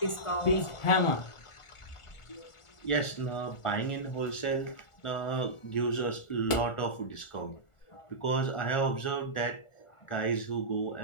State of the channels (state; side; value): late; right; 1.4 ms